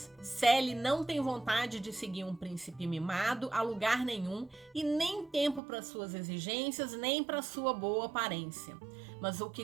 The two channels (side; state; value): left; drops out; at 5.6 s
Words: Sally não tem vontade de seguir um príncipe mimado a lugar nenhum e nem tempo para suas exigências, nem para sua boa aparência. Mas o